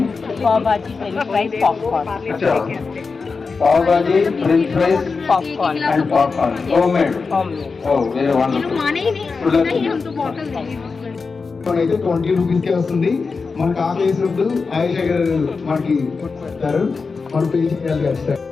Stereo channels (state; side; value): quieter; right; 4.6 dB